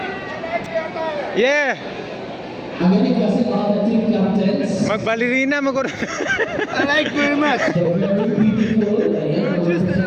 Yeah, magbalerina mo ko. I like very much. You're just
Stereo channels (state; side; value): identical; both; correlation 1.00